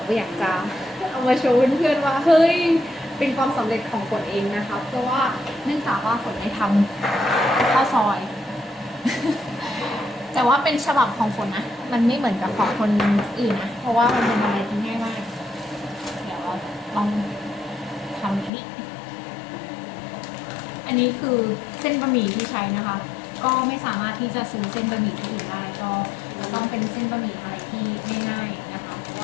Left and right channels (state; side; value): drops out; right; at 18.5 s